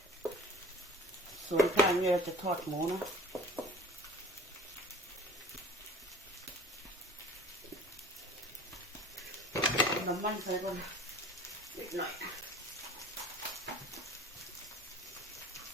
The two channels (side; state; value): both; normal; correlation 0.45